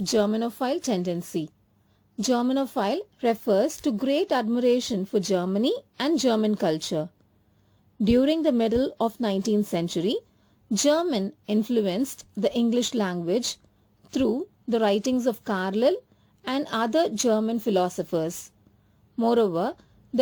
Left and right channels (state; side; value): identical; both; correlation 1.00